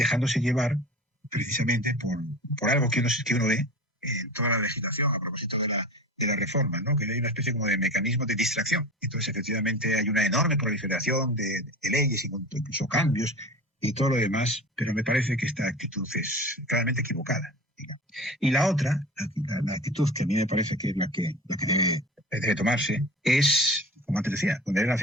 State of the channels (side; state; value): both; normal; correlation 0.34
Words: llevar precisamente por algo que uno ve en toda la legislación a propósito de la reforma, ¿no? Que hay una especie como de mecanismo de distracción. Entonces, efectivamente, hay una enorme proliferación de leyes, incluso cambios y todo lo demás, pero me parece que esta actitud es claramente equivocada. Digamos. Y la otra, la actitud que a mí me parece que es la que debe tomarse, es, como antes decía, poner el